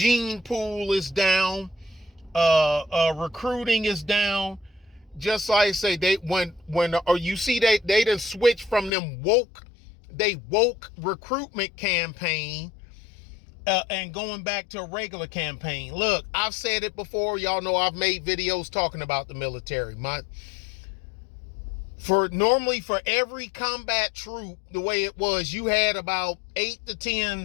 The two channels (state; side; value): drops out; right; at 8.9 s